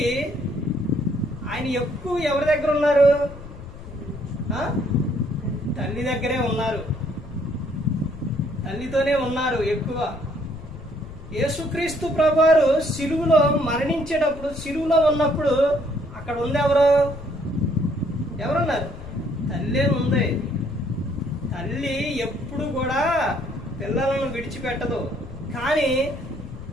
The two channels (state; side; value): noise; left; rumble, 14 dB below the sound